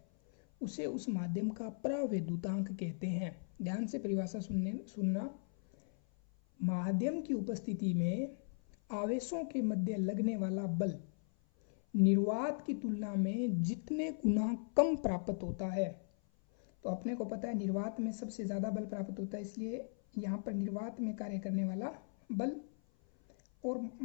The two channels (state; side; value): silent; right; 53 dB below the other